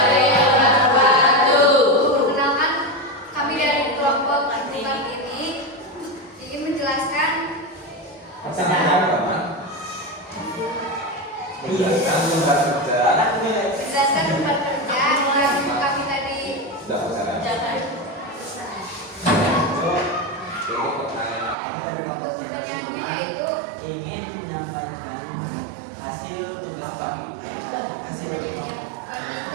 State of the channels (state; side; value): drops out; left; at 21.6 s